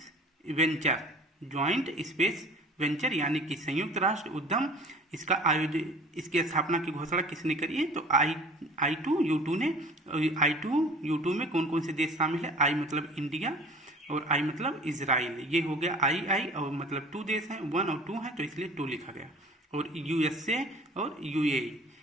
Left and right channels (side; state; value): both; normal; correlation 0.45